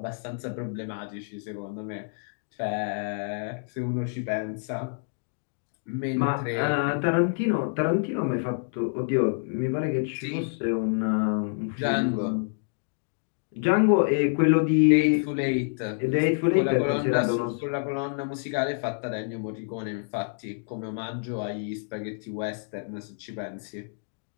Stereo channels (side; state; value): right; silent; digital silence